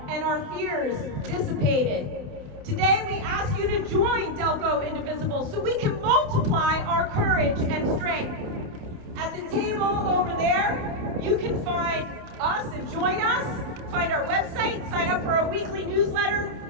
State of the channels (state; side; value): late; left; 28 ms